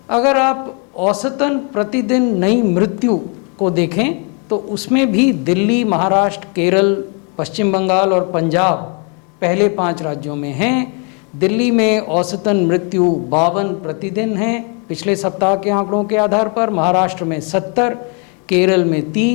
अगर आप औसतन प्रतिदिन नई मृत्यु को देखें तो उसमें भी दिल्ली, महाराष्ट्र, केरल, पश्चिम बंगाल और पंजाब पहले 5 राज्यों में हैं। दिल्ली में औसतन मृत्यु 52 प्रतिदिन हैं पिछले सप्ताह के आंकड़ों के आधार पर। महाराष्ट्र में 70, केरल में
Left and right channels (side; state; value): right; quieter; 36.6 dB